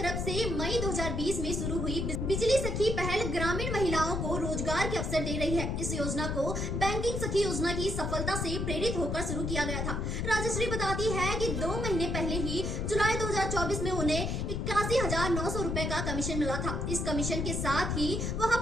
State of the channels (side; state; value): left; noise; rumble, 1 dB below the sound